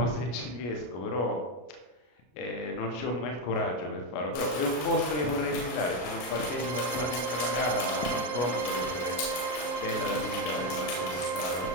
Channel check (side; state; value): right; late; 33 ms